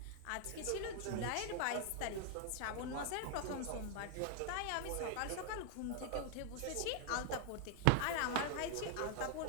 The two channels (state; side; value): different; both; correlation 0.00